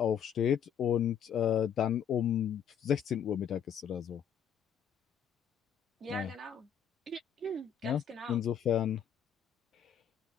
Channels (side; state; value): right; quieter; 8.4 dB